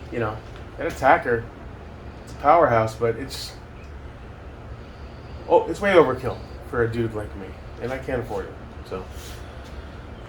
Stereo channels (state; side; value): identical; both; correlation 1.00